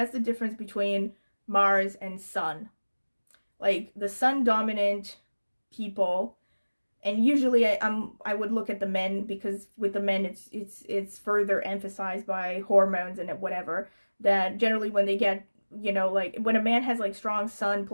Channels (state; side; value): inverted; both; correlation -1.00